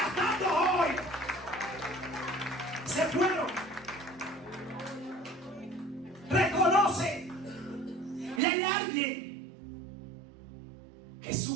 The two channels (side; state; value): left; drops out; at 8.4 s